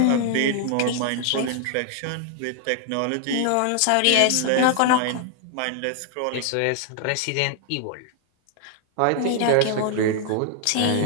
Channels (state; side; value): different; both; correlation 0.00